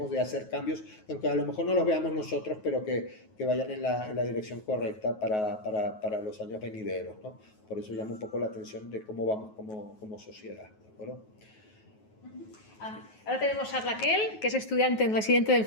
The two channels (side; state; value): right; late; 9.4 ms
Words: de hacer cambios, aunque a lo mejor no los veamos nosotros, pero que vayan en la dirección correcta para los años venideros, ¿no? Por eso llama un poco la atención de cómo vamos como sociedad, ¿de acuerdo? Ahora tenemos a Raquel, que es estudiante residente de